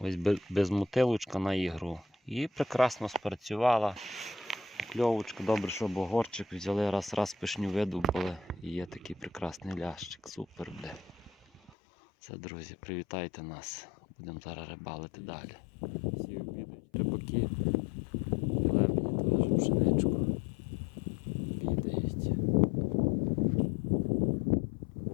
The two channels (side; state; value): right; drops out; at 11.7 s